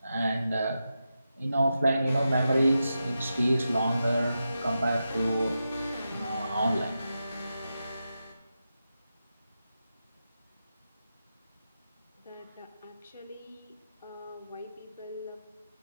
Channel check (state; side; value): inverted; both; correlation -0.89